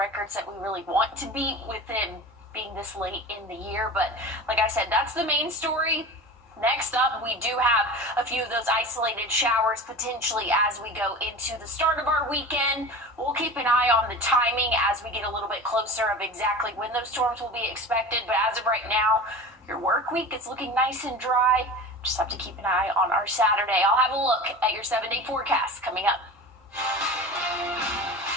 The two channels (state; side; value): normal; both; correlation 0.33